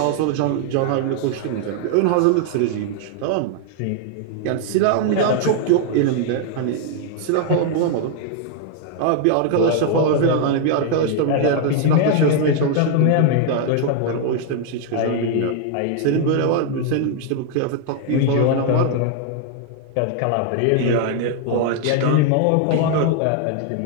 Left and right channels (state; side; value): different; both; correlation 0.00